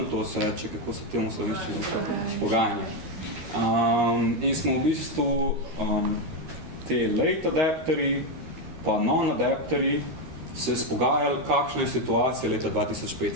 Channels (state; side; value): late; left; 13 ms